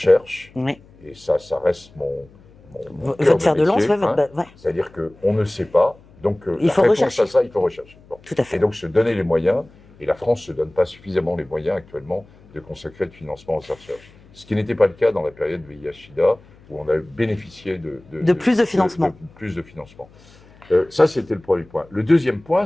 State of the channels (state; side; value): noise; left; hum, 26 dB below the sound